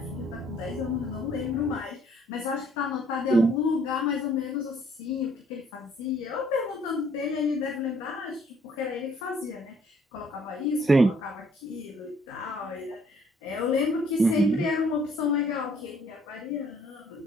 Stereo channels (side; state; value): both; normal; correlation 0.62